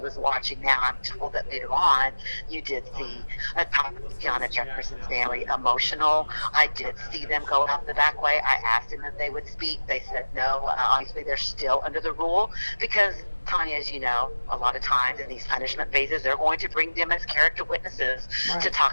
was watching. Now I'm told that later on you did see Atatiana Jefferson's family emotional. I did see them go out the back way. I asked them if they would speak. They said no. Obviously they're still under the rule because, Tanya, as you know, a lot of times in these punishment phases, they're going to bring them as character witnesses to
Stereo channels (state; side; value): inverted; both; correlation -1.00